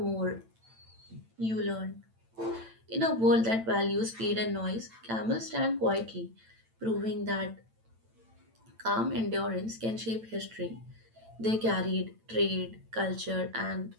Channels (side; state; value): left; late; 8.9 ms